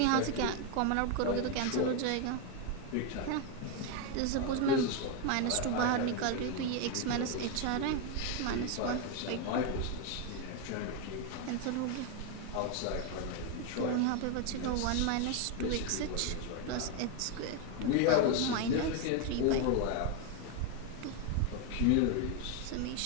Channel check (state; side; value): different; both; correlation 0.01